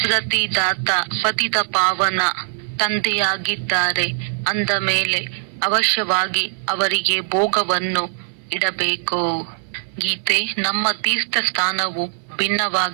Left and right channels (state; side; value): silent; left; 58 dB below the other